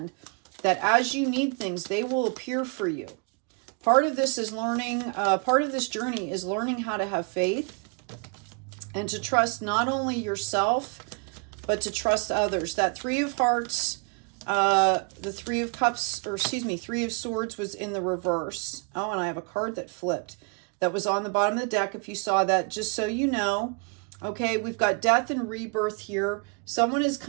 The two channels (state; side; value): quieter; left; 35.1 dB